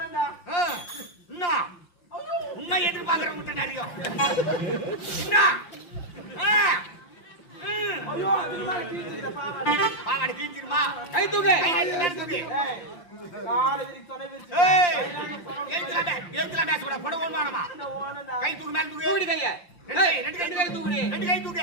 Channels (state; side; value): late; right; 5.7 ms